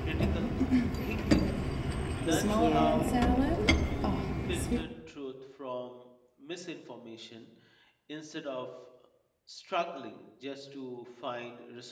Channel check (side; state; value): both; identical; correlation 1.00